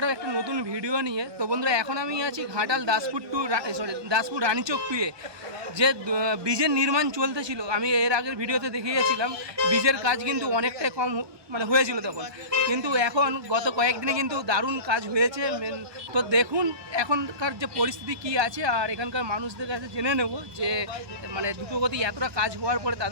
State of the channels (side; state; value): left; late; 1.2 ms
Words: একটা নতুন ভিডিও নিয়ে। তো বন্ধুরা, এখন আমি আছি ঘাটাল দাসপুর রানীচক 2-এ যে ব্রিজের নির্মাণ চলতেছিল। আমি এর আগের ভিডিওতে দেখিয়েছিলাম ব্রিজের কাজ কিন্তু অনেকটাই কম হয়েছিল তখন, কিন্তু এখন গত কয়েকদিনে কিন্তু দারুণ কাজ হয়েছে। তো দেখুন এখনকার যে পরিস্থিতি কি আছে, আর এখানকার মানুষদের কাছে জেনে নেব যে দ্রুতগতি এতটা কাজ হওয়ার পরে